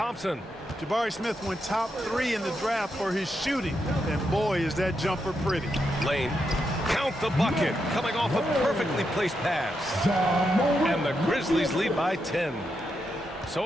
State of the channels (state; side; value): normal; both; correlation 0.83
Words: Jabari Smith went top 3 in the draft for his shooting. And boy, is that jumper pretty. Lane. Count the bucket. Coming off a perfectly placed pass. And the Grizzlies lead by 10.